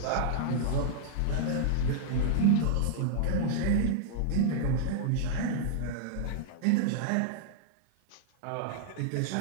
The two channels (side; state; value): both; different; correlation -0.02